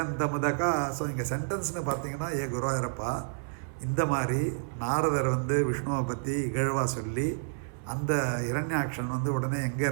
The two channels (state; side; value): silent; left; 57 dB below the other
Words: முதகா. ஸோ இங்கே சென்டென்ஸ்னு பார்த்தீங்கன்னா, ஏ குருவாயூரப்பா, இந்த மாதிரி நாரதர் வந்து விஷ்ணுவை பற்றி இகழ்வா சொல்லி அந்த இரண்யாட்சன் வந்து உடனே எங்கே